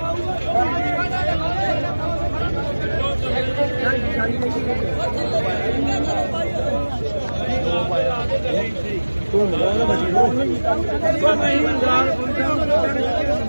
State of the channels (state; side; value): inverted; both; correlation -1.00